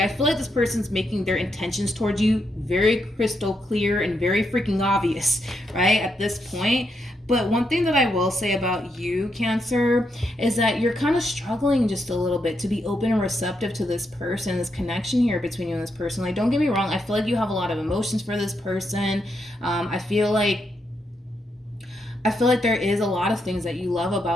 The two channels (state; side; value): normal; both; correlation 0.81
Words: feel like this person's making their intentions towards you very crystal clear and very freaking obvious, right, at this point. But one thing that I will say about you, Cancer, is that you're kind of struggling just a little bit to be open and receptive to this person, this connection here between you and this person. Like, don't get me wrong, I feel like you have a lot of emotions for this person. I feel like there is a lot of things that you love